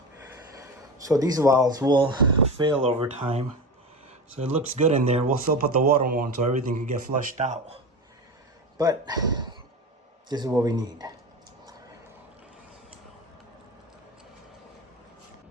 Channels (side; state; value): both; normal; correlation 0.26